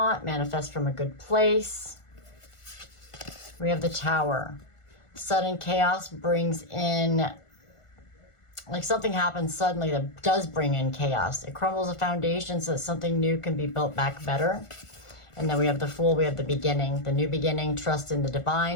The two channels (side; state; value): right; late; 1.4 ms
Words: manifest from a good place. We have the Tower. Sudden chaos brings in, like something happens suddenly that does bring in chaos. It crumbles a foundation so that something new can be built back better. And then we have the Fool, we have the beginning, the new beginning, trust in the